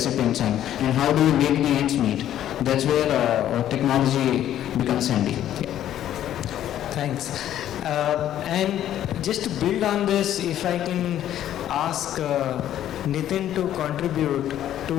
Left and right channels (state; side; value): quieter; right; 11.6 dB